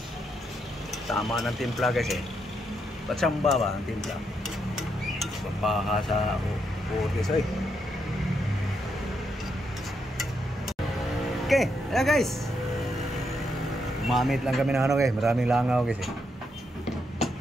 Tama ng timpla guys eh. Patsamba ba ang timpla? Papaha sa food guys eh. Okay, ayan guys. Mamit lang kami ng ano guys. Maraming langaw guys eh.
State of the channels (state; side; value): normal; both; correlation 0.79